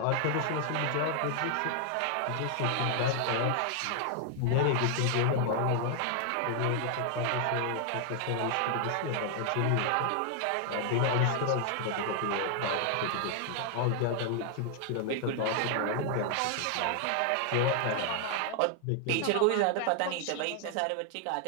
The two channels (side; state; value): both; different; correlation 0.00